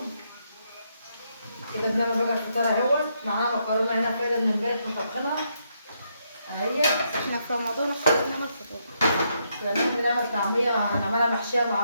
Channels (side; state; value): both; inverted; correlation -0.78